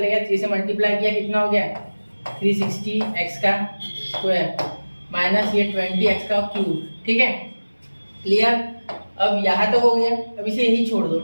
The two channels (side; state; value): both; inverted; correlation -1.00